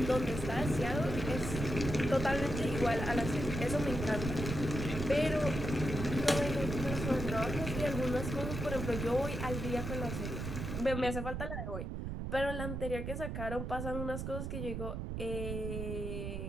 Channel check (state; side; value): noise; right; rumble, 4 dB below the sound